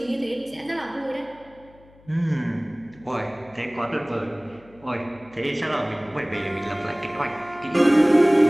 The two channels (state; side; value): noise; left; hum, 26 dB below the sound